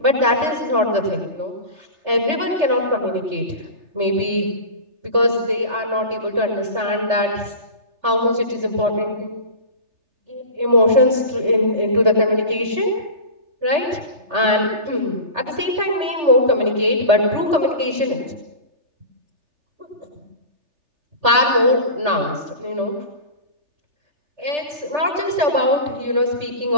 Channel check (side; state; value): left; late; 3.3 ms